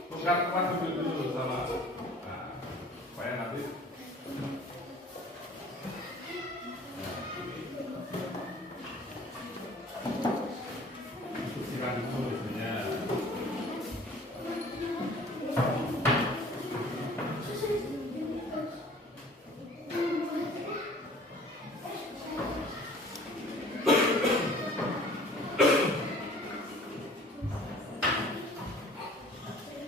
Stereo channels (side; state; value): both; normal; correlation 0.50